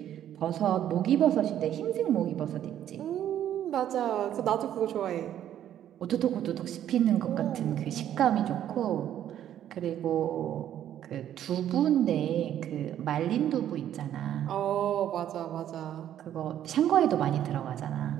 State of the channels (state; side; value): quieter; left; 11.0 dB